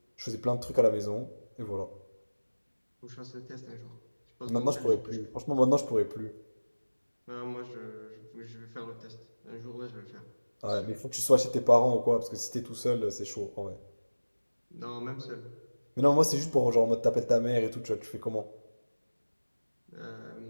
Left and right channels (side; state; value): both; inverted; correlation -1.00